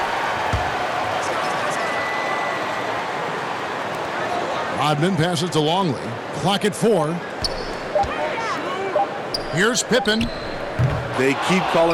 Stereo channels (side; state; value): both; identical; correlation 1.00